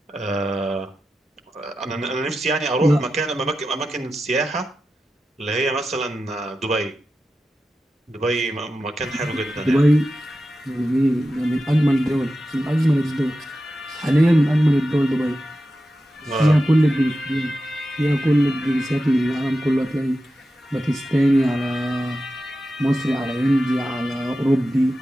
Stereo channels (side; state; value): both; normal; correlation 0.91